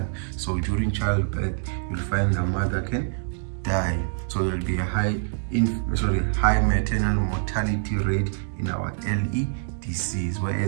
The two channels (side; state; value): left; silent; digital silence